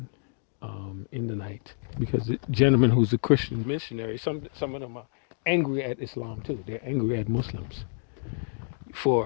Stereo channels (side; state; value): right; silent; digital silence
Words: in the night because the gentleman who's a Christian missionary, some of them are angry at Islam too. They're angry at Muslims